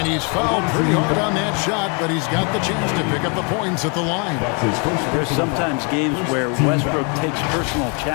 he's fouled pretty hard on that shot, but he's got the chance to pick up the points at the line. There's sometimes games where Westbrook takes personal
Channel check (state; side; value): quieter; right; 35.0 dB